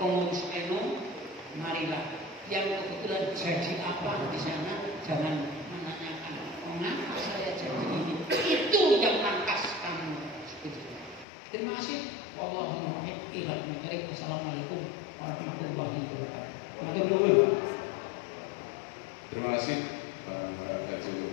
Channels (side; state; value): right; drops out; at 11.2 s